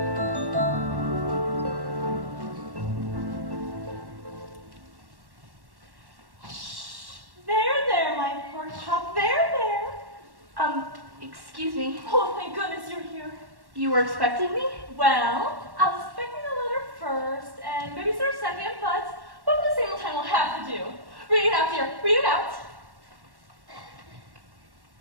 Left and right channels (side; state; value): left; late; 1.1 ms